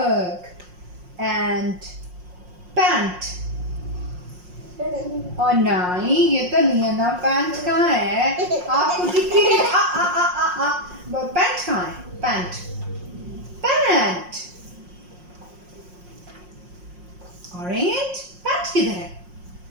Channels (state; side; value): late; left; 5.6 ms